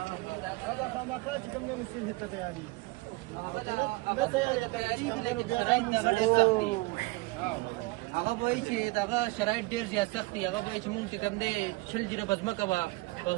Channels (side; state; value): left; quieter; 23.4 dB